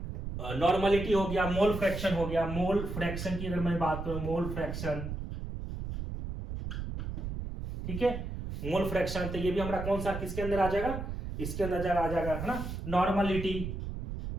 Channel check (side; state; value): right; noise; rumble, 6 dB below the sound